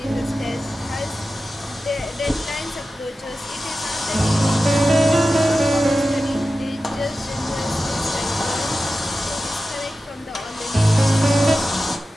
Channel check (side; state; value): both; normal; correlation 0.93